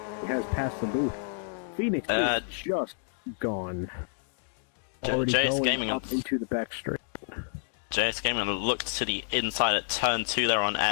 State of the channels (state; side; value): silent; right; digital silence